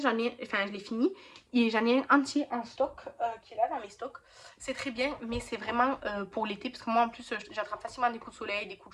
l'ai fini et j'en ai un entier en stock qui est là dans mes stocks. C'est très bien, mais c'est vraiment pour l'été parce que moi en plus j'attrape facilement des coups de soleil, des coups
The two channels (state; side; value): identical; both; correlation 1.00